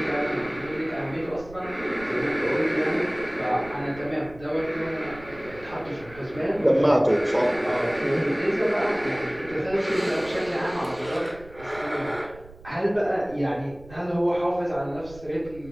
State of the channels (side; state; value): right; noise; rumble, 19 dB below the sound